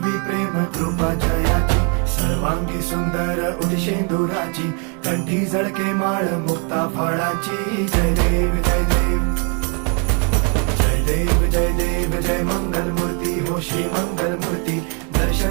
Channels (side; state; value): left; quieter; 37.4 dB